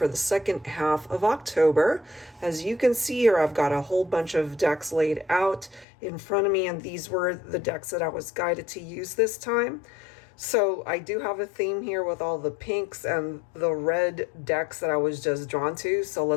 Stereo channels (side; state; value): right; drops out; at 5.9 s